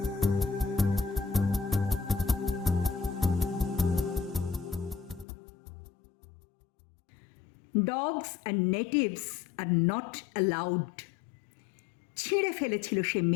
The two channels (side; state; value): right; drops out; at 5.2 s